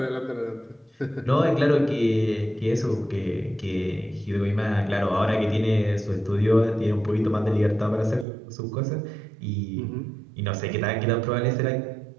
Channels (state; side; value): drops out; left; at 8.2 s